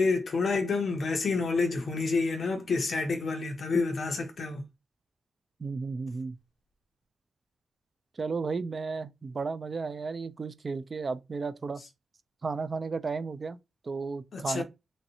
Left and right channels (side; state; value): both; normal; correlation 0.85